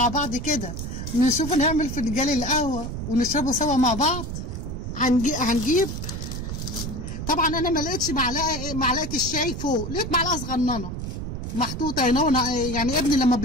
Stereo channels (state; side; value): noise; right; rumble, 6 dB below the sound